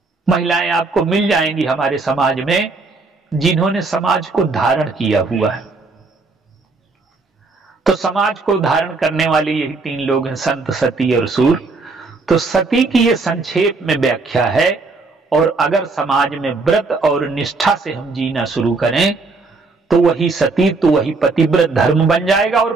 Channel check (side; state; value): left; quieter; 3.8 dB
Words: महिलाएं आपको मिल जाएंगी हमारे समाज में, जिन्होंने समाज को धारण किया हुआ है। तो समाज को धारण करने वाले यही तीन लोग हैं, संत, सती और सूर। तो सती की ये संक्षेप में व्याख्या है। और अगर समाज में व्रत और निष्ठा से हम जीना शुरू करें तो वही सती, तो वही पतिव्रत धर्म बन जाएगा। और